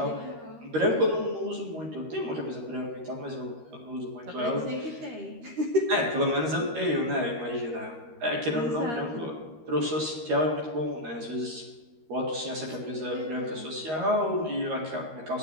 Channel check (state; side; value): late; left; 13 ms